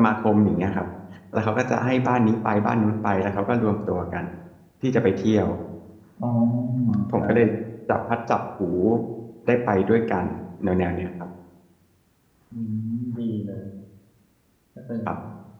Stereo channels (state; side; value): identical; both; correlation 1.00